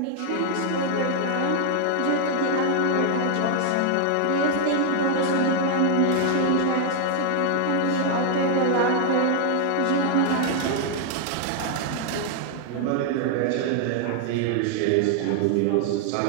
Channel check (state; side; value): different; both; correlation 0.00